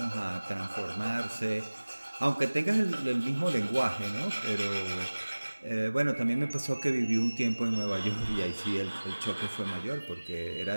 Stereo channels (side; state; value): both; inverted; correlation -1.00